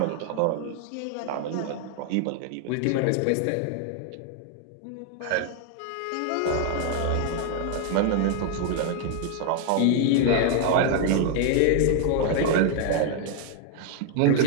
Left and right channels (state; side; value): different; both; correlation 0.00